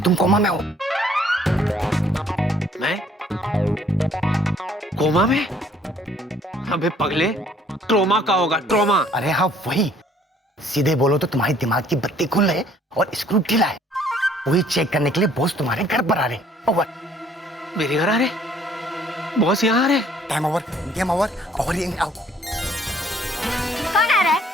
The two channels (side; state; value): both; normal; correlation 0.60